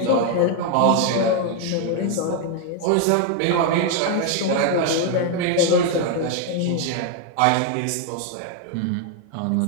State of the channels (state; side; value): different; both; correlation 0.00